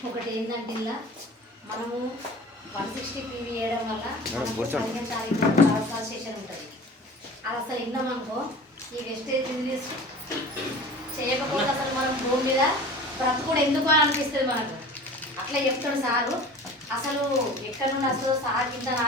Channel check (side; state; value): both; normal; correlation 0.40